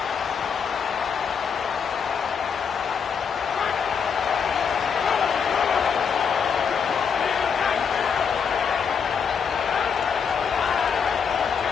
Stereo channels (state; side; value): quieter; right; 6.6 dB